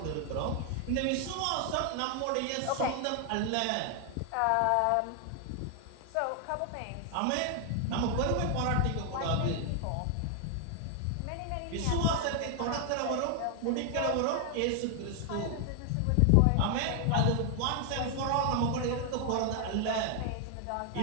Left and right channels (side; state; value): both; different; correlation 0.00